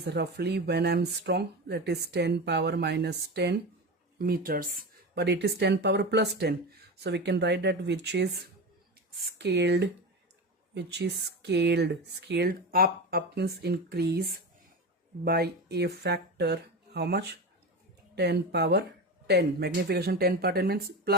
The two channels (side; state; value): both; normal; correlation 0.23